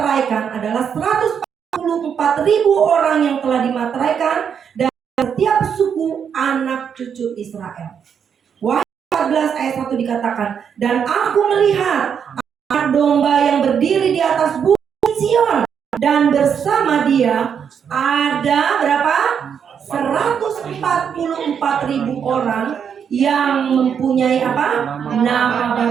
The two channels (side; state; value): left; quieter; 7.5 dB